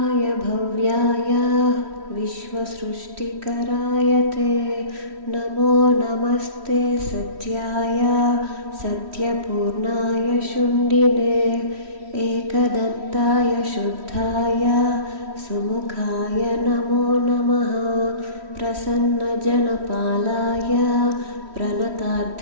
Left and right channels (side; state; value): left; late; 3.1 ms